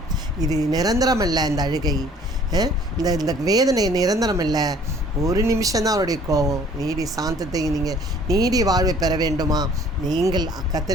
இது நிரந்தரமல்ல, இந்த அழுகை, இந்த வேதனை நிரந்தரமல்ல. ஒரு நிமிஷம்தான் அவருடைய கோபம். நீடி சாந்தத்தை, நீங்கள் நீடி வாழ்வை பெற வேண்டுமா, நீங்கள்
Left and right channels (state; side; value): normal; both; correlation 0.54